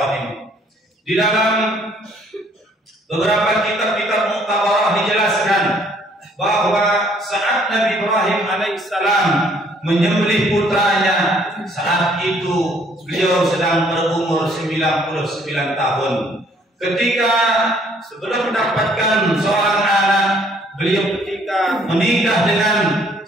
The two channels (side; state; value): both; normal; correlation 0.62